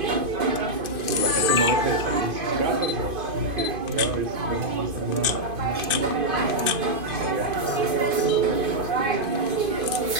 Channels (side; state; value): left; late; 2.5 ms